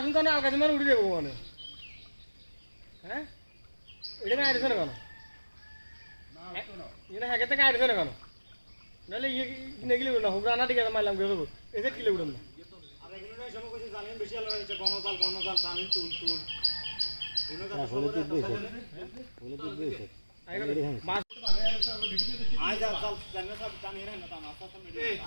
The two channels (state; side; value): inverted; both; correlation -1.00